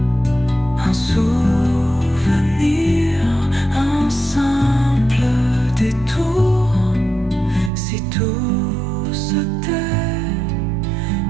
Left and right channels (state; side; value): drops out; left; at 7.7 s